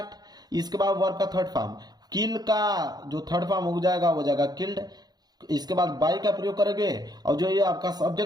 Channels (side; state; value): left; late; 0.19 ms